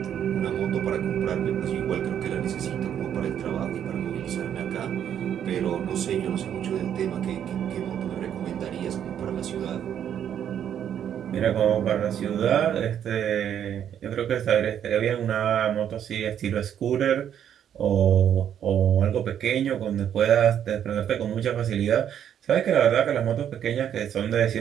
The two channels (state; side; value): quieter; left; 9.5 dB